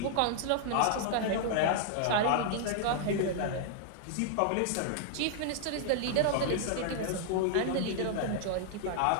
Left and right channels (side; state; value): both; different; correlation -0.01